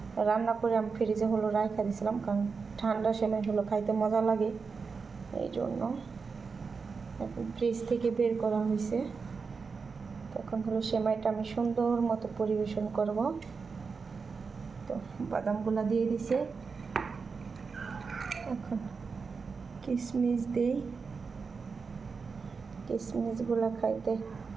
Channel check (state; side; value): quieter; left; 5.0 dB